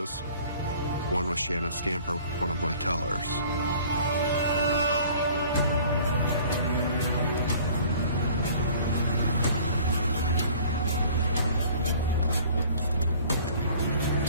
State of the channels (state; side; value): inverted; both; correlation -0.51